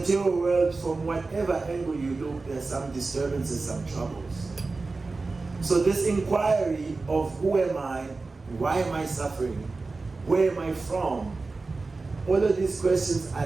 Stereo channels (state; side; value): quieter; left; 3.7 dB